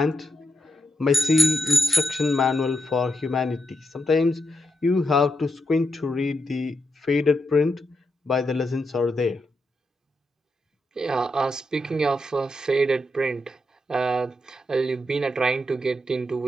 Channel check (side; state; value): both; normal; correlation 0.84